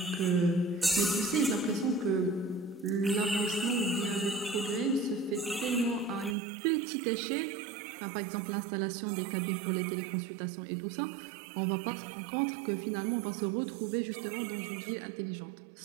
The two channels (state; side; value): drops out; left; at 6.4 s